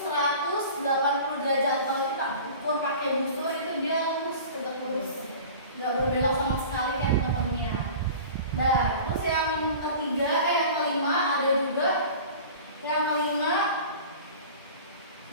derajat. Kalau kita ukur pakai busur itu dia lurus, tegak lurus, nggak berbelok sama sekali kayak teman-temannya. Nah, terus yang ketiga, yang kelima ada juga. Yang kelima,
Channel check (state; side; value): inverted; both; correlation -0.39